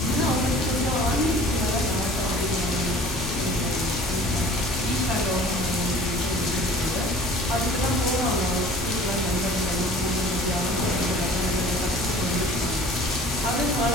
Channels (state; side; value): normal; both; correlation 0.46